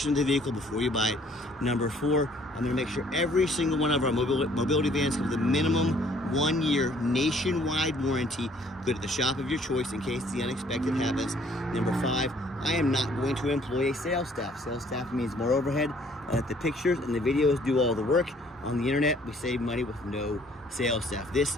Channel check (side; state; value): both; normal; correlation 0.60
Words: of the vehicle before you buy it. Number 4, I'm going to make sure every single one of our mobility vans have the minimum 1 year nationwide warranty. Go to the shop of your choice in case the unexpected happens. Number 5, I am not going to employ a sales staff. Sales staff means more overhead. The pictures and the videos do all the work. On the internet, we save money with no sales staff.